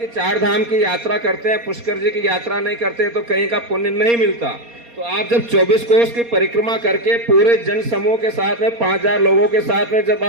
4 धाम की यात्रा करते हैं, पुष्कर जी की यात्रा नहीं करते तो कहीं का पुण्य नहीं मिलता। तो आप जब 24 कोस की परिक्रमा करके पूरे जन समूह के साथ में 5000 लोगों के साथ में जब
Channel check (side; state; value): left; late; 4.2 ms